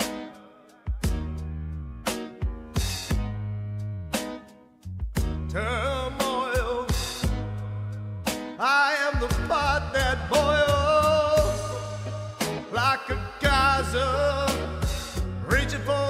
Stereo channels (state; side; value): identical; both; correlation 1.00